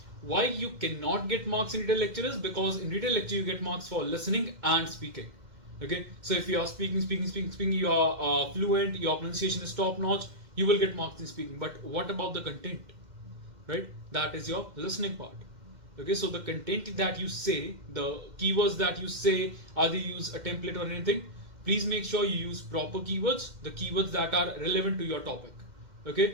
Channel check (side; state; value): left; late; 2.1 ms